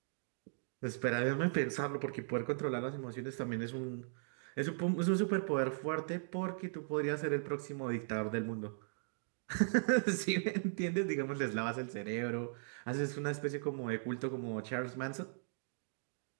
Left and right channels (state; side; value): silent; left; digital silence